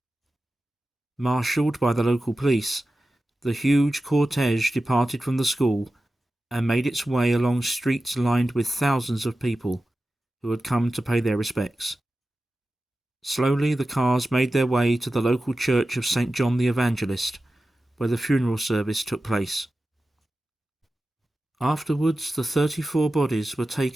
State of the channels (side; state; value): both; normal; correlation 0.94